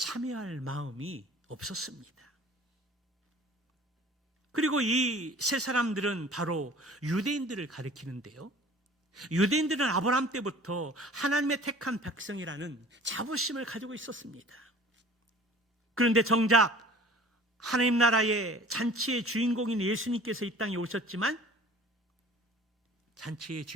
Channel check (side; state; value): both; normal; correlation 0.47